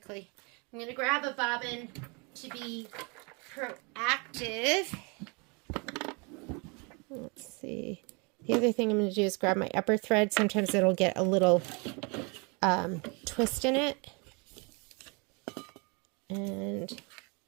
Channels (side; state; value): left; quieter; 31.4 dB